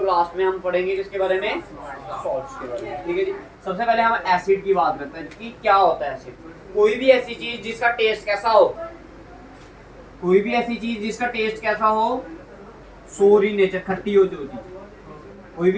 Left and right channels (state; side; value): identical; both; correlation 1.00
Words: लास्ट में हम पढ़ेंगे किसके बारे में, सॉल्ट्स के बारे में, ठीक है जी। सबसे पहले हम एसिड की बात करते हैं कि क्या होता है एसिड। कोई भी ऐसी चीज जिसका टेस्ट कैसा हो, कोई भी ऐसी चीज जिसका टेस्ट कैसा हो, सोर इन नेचर, खट्टी हो जो चीज। कोई